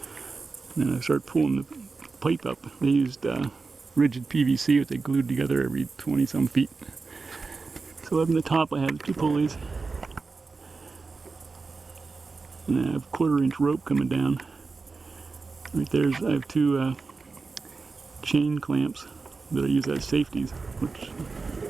and I start pulling the pipe up. They used rigid PVC that they glued together every 20 some feet. So up in the top I have 2 pulleys, and I have 1/4 inch rope coming down. Right there's, I have two chain clamps that I use as safeties, which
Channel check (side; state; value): left; quieter; 4.2 dB